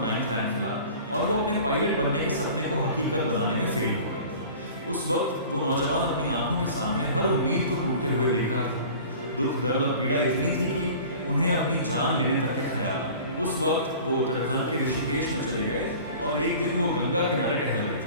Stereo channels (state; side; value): inverted; both; correlation -0.42